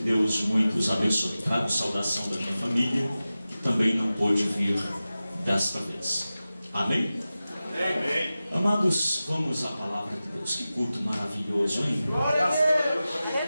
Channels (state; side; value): inverted; both; correlation -0.95